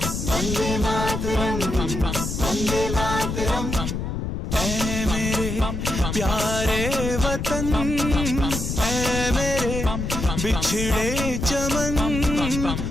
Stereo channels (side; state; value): left; noise; rumble, 3 dB below the sound